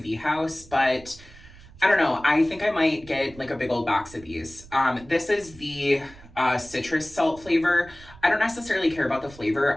house, but I don't know. I think I might get like a big old box of these. This is the citrus salt flavor. I don't necessarily care about the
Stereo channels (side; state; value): right; noise; rumble, 21 dB below the sound